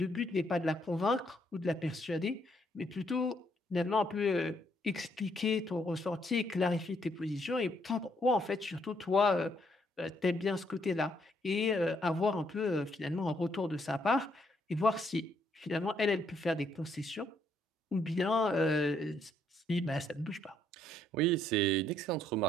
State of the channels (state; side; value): normal; both; correlation 0.71